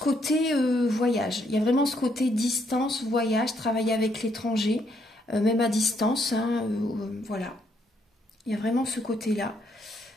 voyage, il y a vraiment ce côté distance, voyage, travailler avec l'étranger, même à distance, hein, voilà. Il y a vraiment ce côté-là.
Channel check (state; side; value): normal; both; correlation 0.73